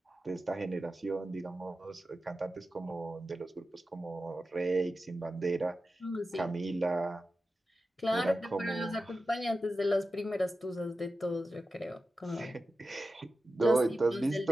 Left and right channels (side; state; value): both; normal; correlation 0.92